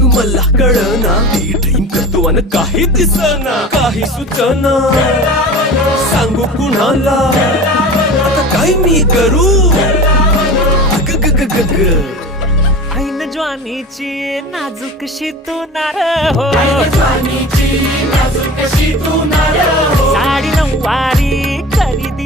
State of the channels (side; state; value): both; normal; correlation 0.34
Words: मला कळना. ड्रीम करतो अन काही दिसना. काही सुचना सांगू कुणाला. आता काय मी करू. ऐन ज्वानीची नाजूकशी तू नार हो. साडी नऊवारी करी